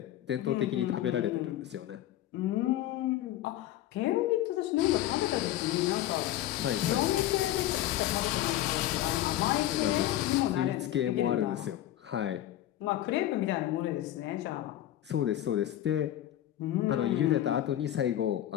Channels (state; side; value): quieter; right; 13.2 dB